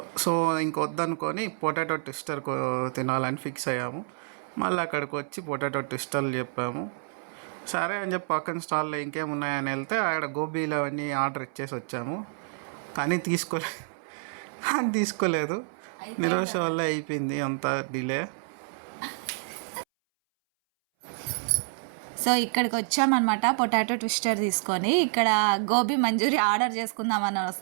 సో ఇంకొద్దనుకొని పొటాటో ట్విస్టర్ తినాలని ఫిక్స్ అయ్యాము. మళ్ళీ అక్కడికి వచ్చి పొటాటో ట్విస్టర్లు చెప్పాము. సరే అని చెప్పి పక్కన స్టాల్లో ఇంకేమున్నాయని వెళ్తే ఆడ గోబీలు అవన్నీ ఆర్డర్ ఇచ్చేసి వచ్చాము. కానీ తీసుకోలేదు. నిరాశ వల్ల అయిపోయింది అంత డిలే. సో ఇక్కడికి వచ్చామన్నమాట పొటాటో ట్విస్టర్ తీసుకొని. ఇక్కడ గోబీ మంచూరియా ఆర్డర్ చేసుకుందామని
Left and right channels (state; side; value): silent; left; 59 dB below the other